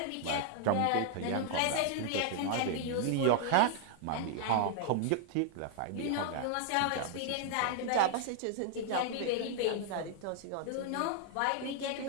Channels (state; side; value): different; both; correlation 0.00